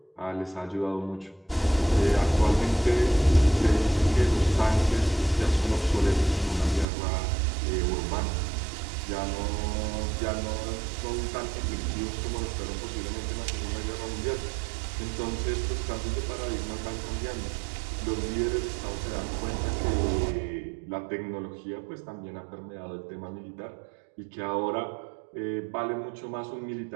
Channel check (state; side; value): drops out; left; at 6.9 s